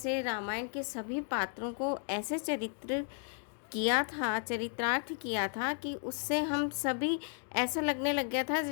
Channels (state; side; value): silent; right; 55 dB below the other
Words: रामायण के सभी पात्रों को ऐसे चरित्रार्थ किया था कि उससे हम सभी ऐसा लगने लग गया था